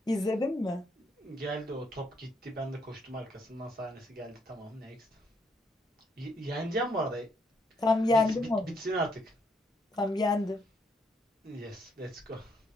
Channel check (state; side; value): normal; both; correlation 0.73